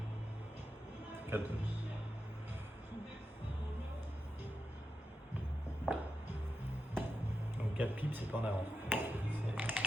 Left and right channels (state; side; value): normal; both; correlation 0.89